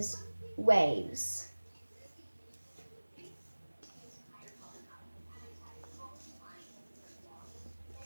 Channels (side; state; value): both; inverted; correlation -1.00